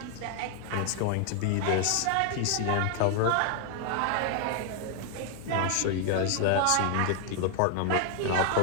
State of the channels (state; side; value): different; both; correlation 0.00